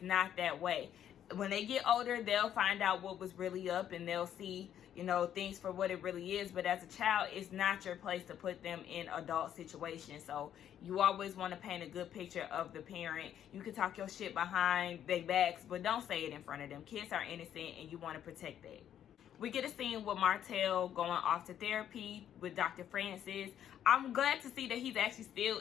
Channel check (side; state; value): right; quieter; 10.1 dB